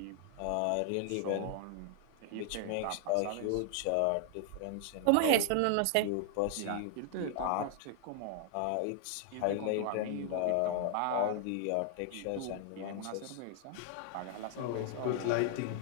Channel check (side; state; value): both; different; correlation 0.00